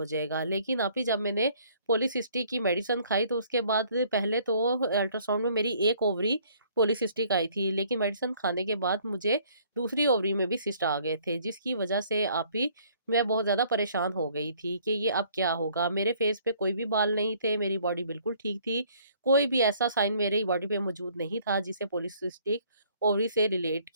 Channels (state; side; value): inverted; both; correlation -0.60